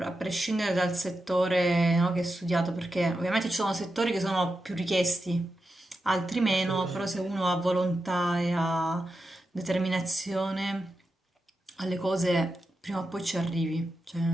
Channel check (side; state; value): both; normal; correlation 0.89